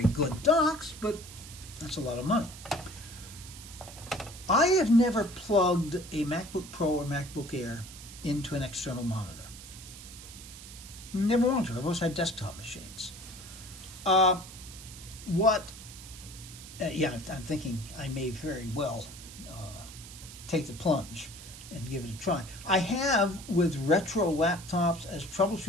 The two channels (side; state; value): right; noise; hiss, 15 dB below the sound